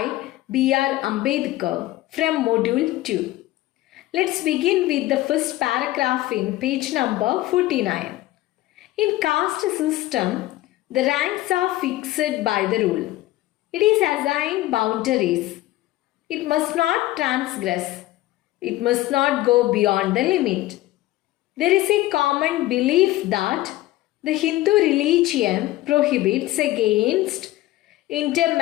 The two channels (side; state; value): right; quieter; 16.6 dB